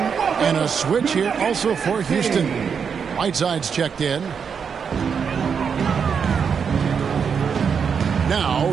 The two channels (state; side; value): quieter; left; 6.6 dB